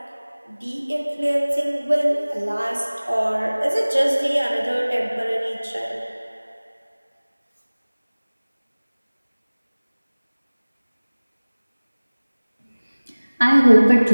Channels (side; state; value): both; inverted; correlation -1.00